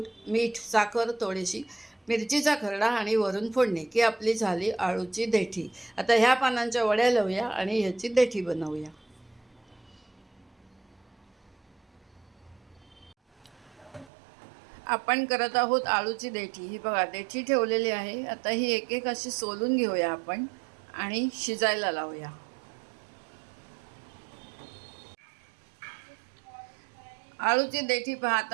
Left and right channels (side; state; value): left; drops out; at 14.1 s